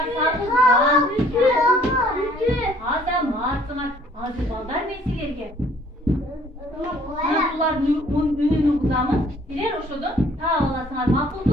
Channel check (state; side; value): normal; both; correlation 0.59